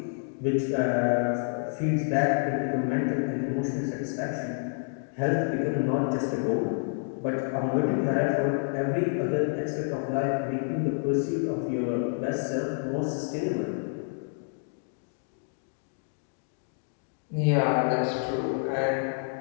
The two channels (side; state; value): right; silent; 59 dB below the other